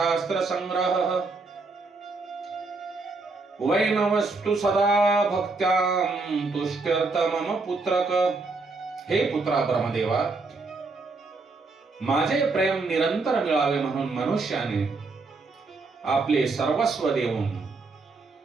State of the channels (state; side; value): quieter; left; 3.8 dB